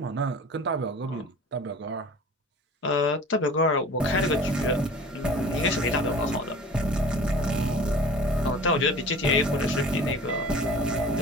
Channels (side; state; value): both; normal; correlation 0.43